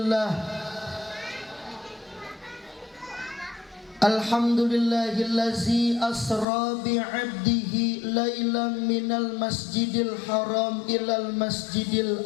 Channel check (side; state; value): right; drops out; at 6.5 s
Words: Alhamdulillahillazi asra bi'abdihi lailan minal masjidil haram ilal masjidil